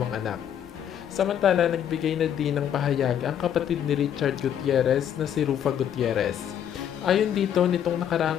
anak. Samantala, nagbigay na din ng pahayag ang kapatid ni Richard Gutierrez na si Rufa Gutierrez. Ayon dito, nitong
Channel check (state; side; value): quieter; right; 9.5 dB